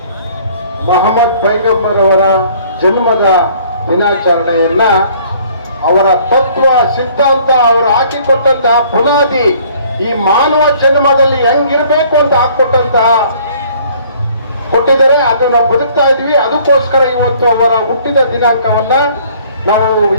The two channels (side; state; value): both; inverted; correlation -0.57